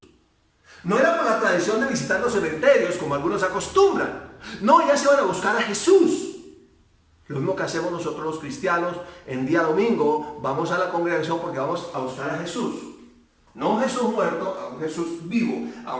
No era por la tradición de visitar los cementerios, como algunos acostumbran. No, ellas iban a buscar a Jesús. Lo mismo que hacemos nosotros los cristianos en día domingo. Vamos a la congregación porque vamos a buscar a Jesús. No a un Jesús muerto, a un Jesús vivo, a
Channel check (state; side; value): identical; both; correlation 1.00